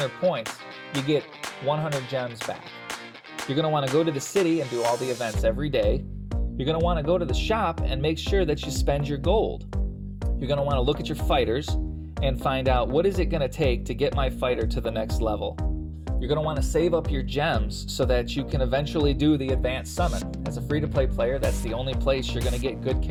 points, you get 100 gems back. You're going to want to go to the city and do all the events every day. You're going to want to go to the shop and make sure that you spend your gold. You're going to want to look at your fighters and find out what is it going to take to get my fighter to the next level. You're going to want to save up your gems so that you can eventually do the advanced summon. As a free-to-play player, that's the only place you're going to get good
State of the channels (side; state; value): both; identical; correlation 1.00